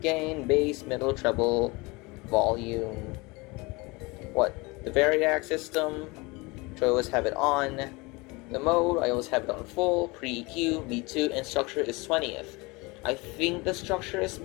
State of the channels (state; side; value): quieter; right; 25.2 dB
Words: gain, bass, middle, treble, volume, the variac system, which I always have it on. The mode, I always have it on full, pre-EQ, V2, and structure is 20th. I think the structure is